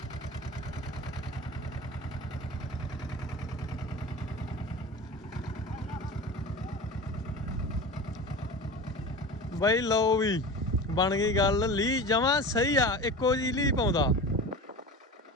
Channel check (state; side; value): normal; both; correlation 0.32